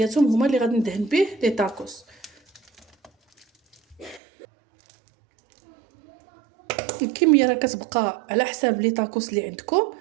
هما اللي غادي ندهن به لي طاكوس. الكميه راه كتبقى على حساب لي طاكوس اللي عندكم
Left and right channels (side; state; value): left; drops out; at 4.2 s